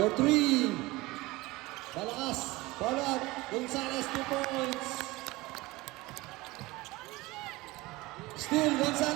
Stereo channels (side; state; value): left; quieter; 21.0 dB